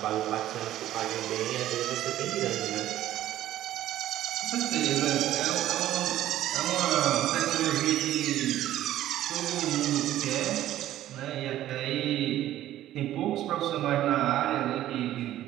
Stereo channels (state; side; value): quieter; left; 13.3 dB